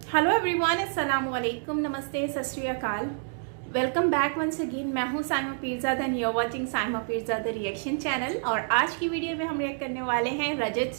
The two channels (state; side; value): silent; left; 59 dB below the other